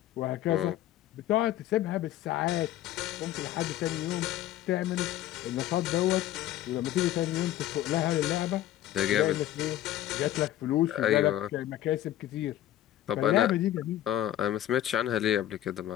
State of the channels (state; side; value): quieter; right; 13.1 dB